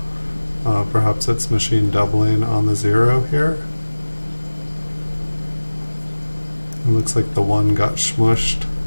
Perhaps it's machine doubling on the 0 here. It looks like the 1 got smushed.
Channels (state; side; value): inverted; both; correlation -1.00